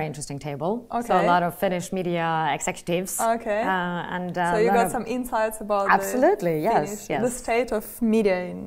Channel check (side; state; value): both; identical; correlation 1.00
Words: interesting table. Okay. So a lot of Finnish media executives. Okay. So you got some insights about absolutely, yes. the state of media